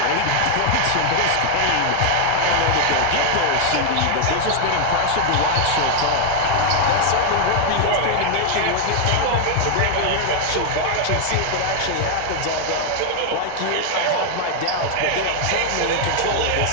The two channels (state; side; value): different; both; correlation 0.00